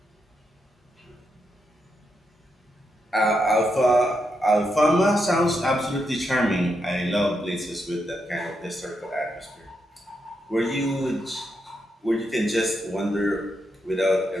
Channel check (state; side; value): normal; both; correlation 0.82